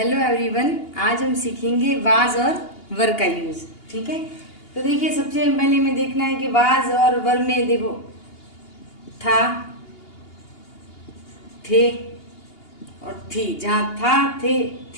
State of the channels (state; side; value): late; right; 2.8 ms